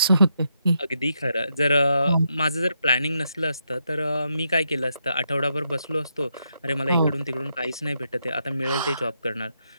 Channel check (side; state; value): both; inverted; correlation -0.80